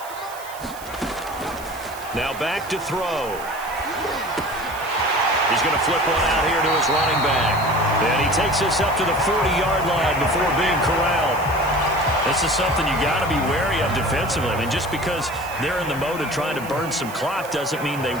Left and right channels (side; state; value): right; noise; hiss, 17 dB below the sound